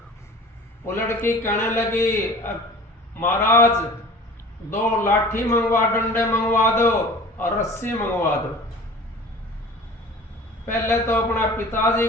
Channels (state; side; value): normal; both; correlation 0.42